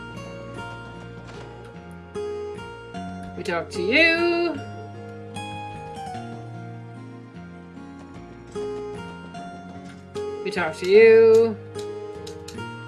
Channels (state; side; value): identical; both; correlation 1.00